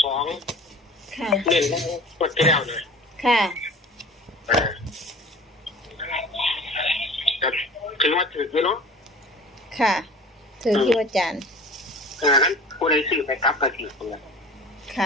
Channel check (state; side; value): normal; both; correlation 0.42